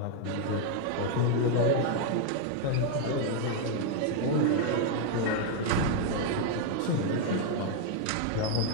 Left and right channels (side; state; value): both; different; correlation 0.00